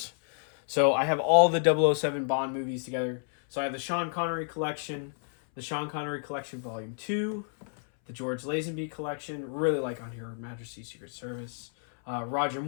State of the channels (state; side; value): silent; right; 58 dB below the other